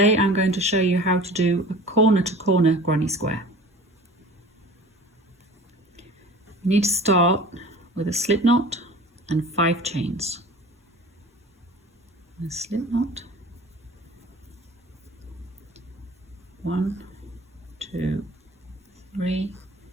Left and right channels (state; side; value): normal; both; correlation 0.41